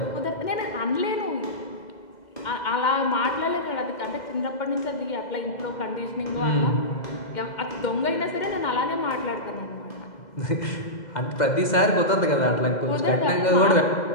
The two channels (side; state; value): right; late; 2.0 ms